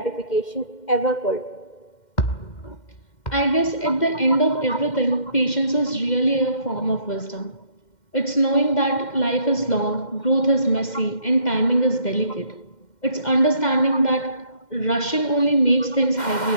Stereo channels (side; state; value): right; late; 2.1 ms